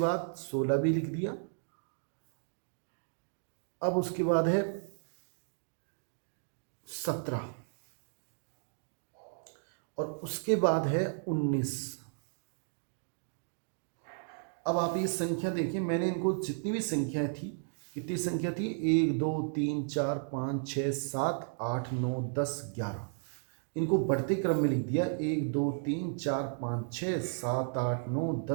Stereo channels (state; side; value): silent; left; digital silence